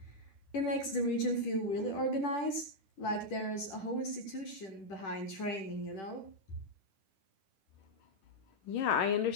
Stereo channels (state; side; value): late; right; 10 ms